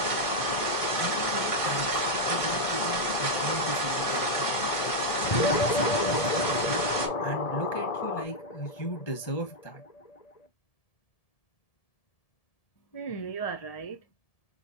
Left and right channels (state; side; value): late; right; 1.6 ms